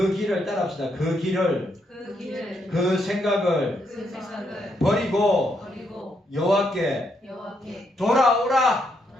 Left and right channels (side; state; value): both; normal; correlation 0.77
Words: 길을 따라합시다. 그 길을 그 생각을 버리고 여호와께